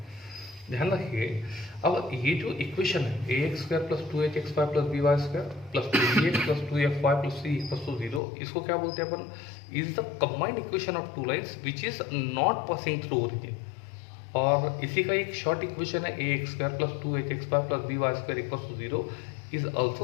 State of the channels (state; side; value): drops out; right; at 8.2 s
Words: ध्यान रखिए, अब ये जो इक्वेशन है ax square plus 2hxy plus by square plus 2gx plus 2fy plus c equals to 0, इसको क्या बोलते हैं अपन? Is the combined equation of two lines which is not passing through origin. और इसी का एक शॉर्ट इक्वेशन है ax square plus 2hxy plus by square equals to 0 is